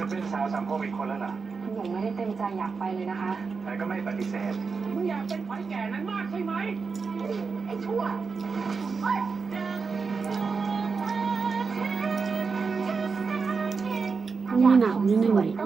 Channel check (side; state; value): left; quieter; 5.0 dB